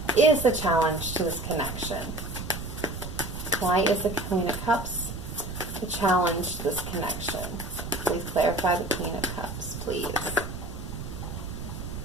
is the challenge to this connection. Why is the Queen of Cups the challenge to this connection? Please clarify the Queen of Cups, please.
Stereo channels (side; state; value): right; noise; rumble, 8 dB below the sound